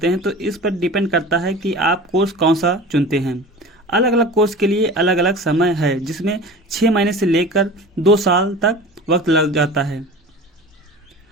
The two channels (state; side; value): normal; both; correlation 0.37